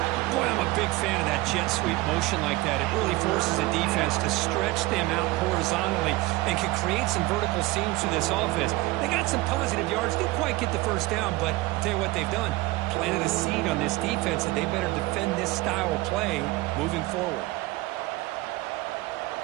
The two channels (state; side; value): quieter; left; 20.2 dB